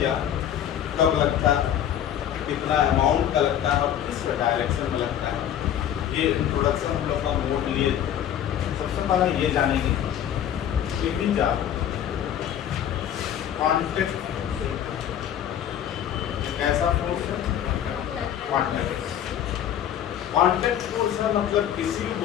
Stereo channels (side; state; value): right; quieter; 10.2 dB